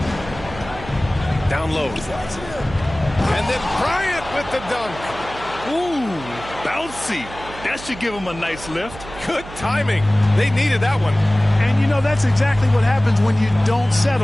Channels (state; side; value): noise; right; hum, 15 dB below the sound